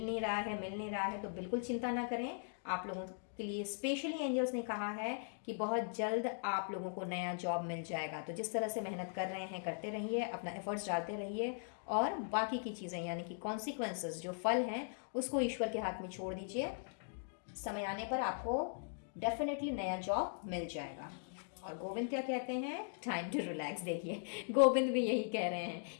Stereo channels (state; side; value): silent; right; digital silence